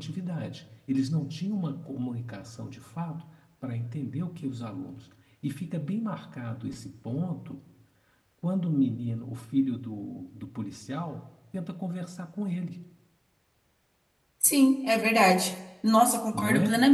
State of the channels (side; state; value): both; identical; correlation 1.00